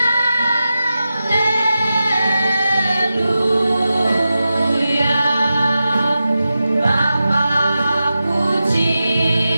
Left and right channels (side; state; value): both; inverted; correlation -0.92